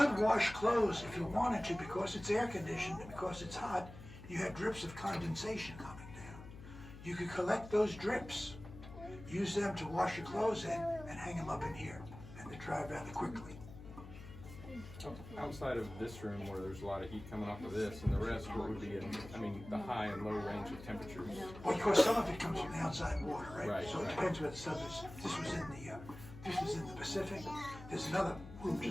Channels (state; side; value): noise; left; hum, 14 dB below the sound